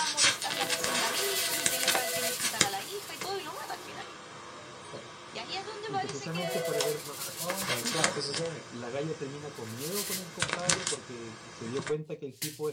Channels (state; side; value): identical; both; correlation 1.00